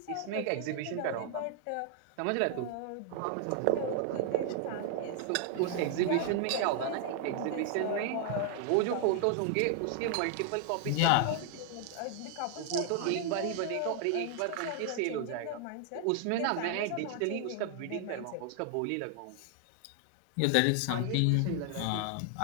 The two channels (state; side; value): different; both; correlation 0.00